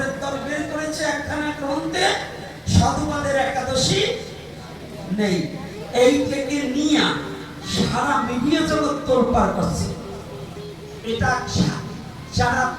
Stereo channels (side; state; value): both; identical; correlation 1.00